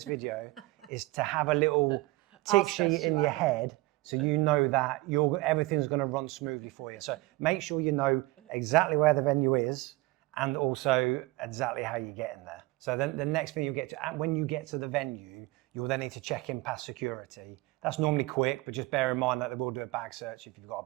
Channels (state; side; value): quieter; left; 20.6 dB